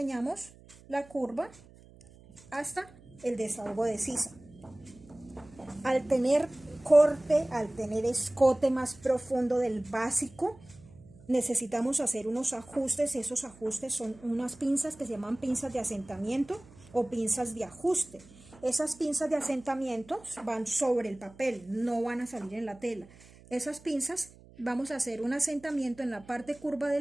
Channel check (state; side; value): noise; right; hum, 23 dB below the sound